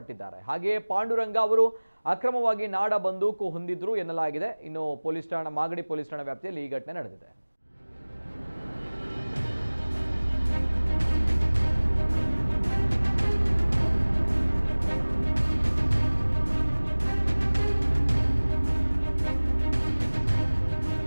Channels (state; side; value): inverted; both; correlation -1.00